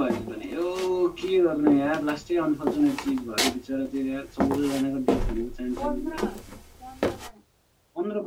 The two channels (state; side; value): identical; both; correlation 1.00